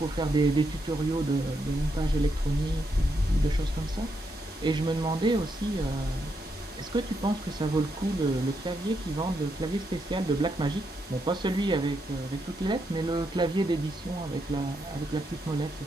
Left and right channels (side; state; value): both; normal; correlation 0.80